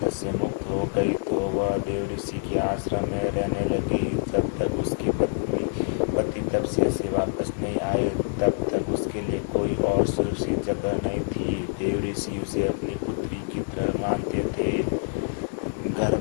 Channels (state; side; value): silent; right; 61 dB below the other